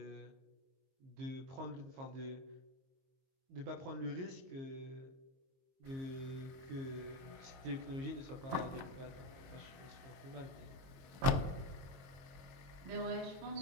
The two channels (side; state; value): left; late; 22 ms